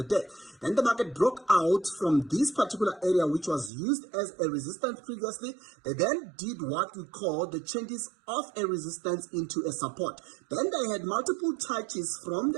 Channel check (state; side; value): drops out; left; at 3.7 s